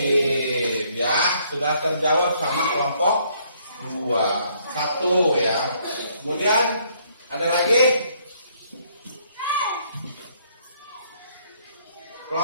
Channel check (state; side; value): inverted; both; correlation -0.67